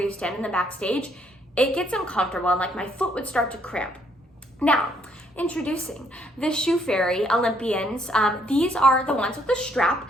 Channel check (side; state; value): both; normal; correlation 0.69